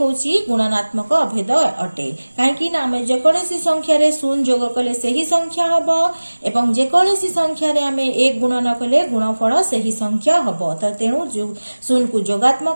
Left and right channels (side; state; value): both; inverted; correlation -1.00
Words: गुणनात्मक अभेद अटे काहेकि ना हमें जेकोसी संख्या रे 0 जोग कले सही संख्या हबो एवं जेकोसी संख्या रे हमें 1 गुणन कले गुणफल सही संख्या हबो त तेनु 0 को